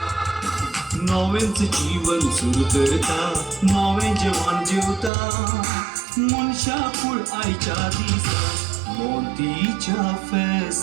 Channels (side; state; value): left; drops out; at 5.1 s